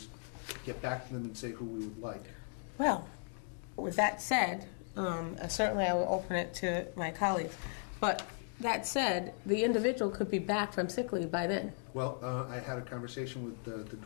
get back to them and say who we would like. Well, with that said, certainly I will open it to my colleagues, but that said, the individual could be back from sick leave by then. Well, I had a conversation with the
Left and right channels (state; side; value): silent; right; 53 dB below the other